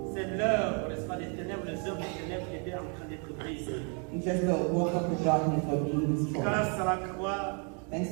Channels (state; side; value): quieter; left; 37.8 dB